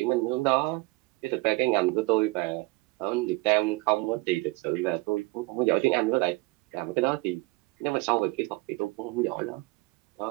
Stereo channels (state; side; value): quieter; left; 23.4 dB